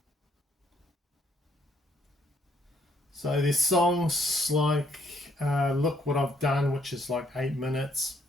So there's songs like Look What I've Done, which is like 8 minutes.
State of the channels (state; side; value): normal; both; correlation 0.69